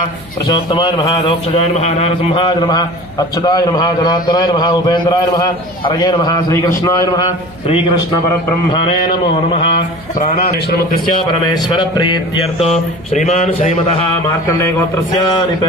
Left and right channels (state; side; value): noise; right; hum, 22 dB below the sound